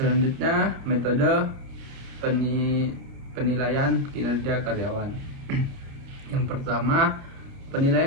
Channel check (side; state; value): left; late; 29 ms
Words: metode penilaian kinerja karyawan. Yang pertama,